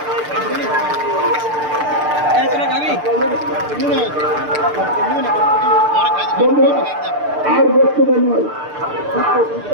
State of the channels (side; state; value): left; late; 6.7 ms